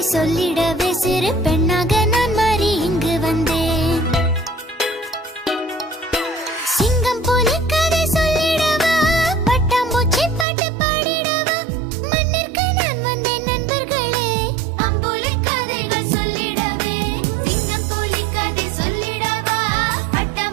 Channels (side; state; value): left; drops out; at 10.5 s